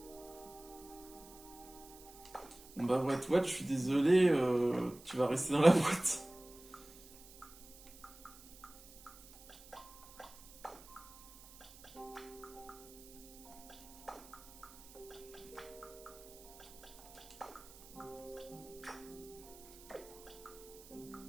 Bon bah What, je suis désolé, tu vas rester dans la boîte.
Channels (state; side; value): noise; right; hiss, 19 dB below the sound